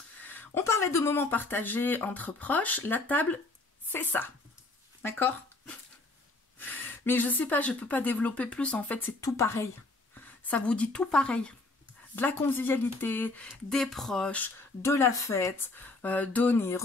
On parlait de moments partagés entre proches. La table, c'est ça. D'accord? Mais je sais pas, je peux pas développer plus. En fait, c'est tout pareil. Ça vous dit tout pareil. De la convivialité, des proches, de la fête, donner,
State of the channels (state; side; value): quieter; right; 3.1 dB